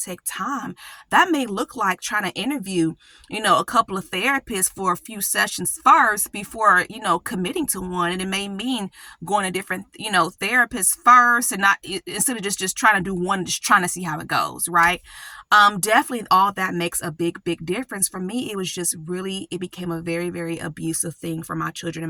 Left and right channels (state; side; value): identical; both; correlation 1.00